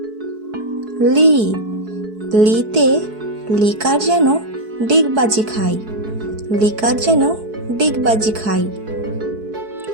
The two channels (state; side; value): late; left; 4.6 ms